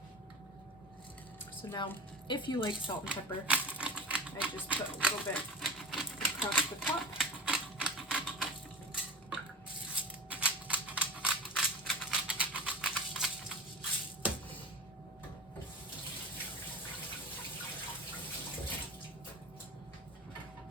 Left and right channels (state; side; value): normal; both; correlation 0.31